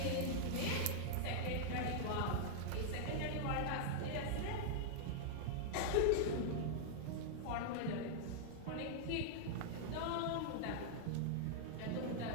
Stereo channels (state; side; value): different; both; correlation -0.01